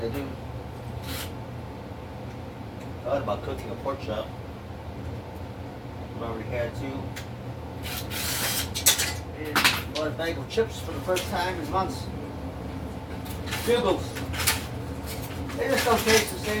do. Thought about cooking a pork chop. I've already had two. And bought a bag of chips for the first time in months. Bugles. They just don't taste the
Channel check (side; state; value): both; identical; correlation 1.00